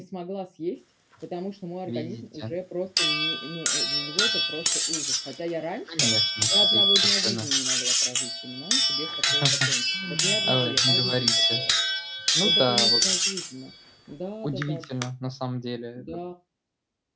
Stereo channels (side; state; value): both; identical; correlation 1.00